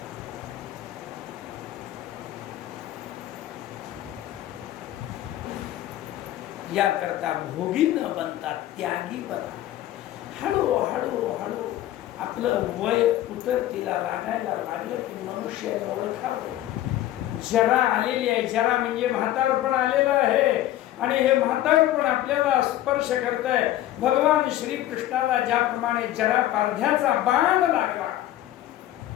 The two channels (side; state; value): right; quieter; 13.8 dB